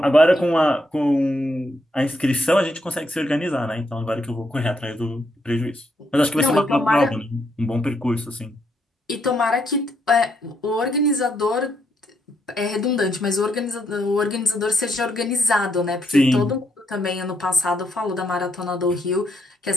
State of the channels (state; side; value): normal; both; correlation 0.76